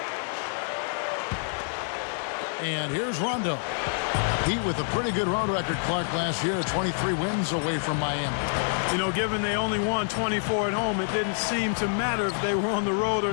And here's Rondo. Heat with a pretty good road record, Clark, last year. 23 wins away from Miami. You know, given they only won 24 at home, it didn't seem to matter if they were on the road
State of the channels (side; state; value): right; silent; 60 dB below the other